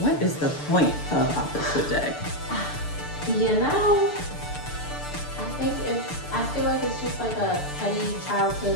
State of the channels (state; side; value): late; right; 6.8 ms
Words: is the point of opposite day? You know, I feel like it's just like a petty